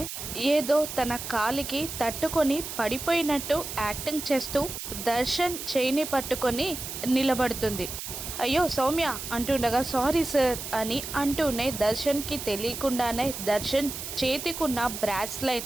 ఏదో తన కాలికి తట్టుకొని పడిపోయినట్టు యాక్టింగ్ చేస్తూ దర్శన్ చేయిని పట్టుకొని నిలబడుతుంది. అయ్యో సౌమ్య అంటుండగా సారీ సార్ అని అంటూనే దర్శన్కి తెలియకుండానే దర్శన్ చేతికున్న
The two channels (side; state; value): right; noise; hiss, 7 dB below the sound